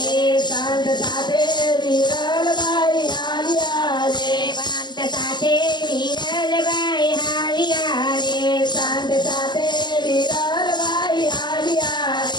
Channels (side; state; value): right; late; 0.21 ms